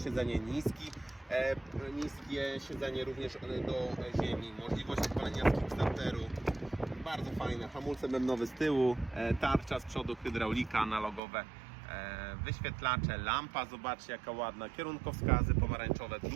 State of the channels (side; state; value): left; drops out; at 11.2 s